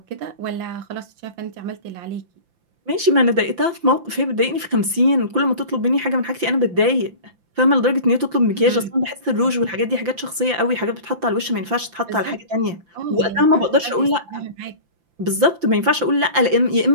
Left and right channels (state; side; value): late; left; 5.8 ms